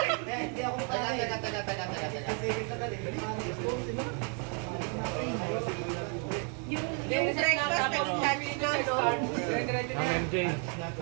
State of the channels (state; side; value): quieter; left; 39.3 dB